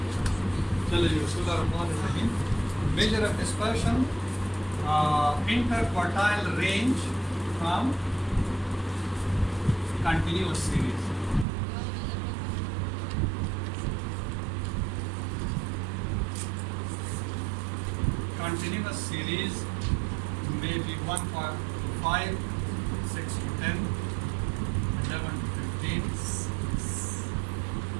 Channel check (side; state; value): left; drops out; at 11.5 s